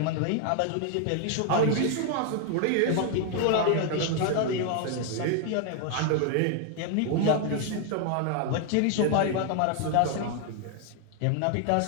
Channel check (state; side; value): different; both; correlation 0.00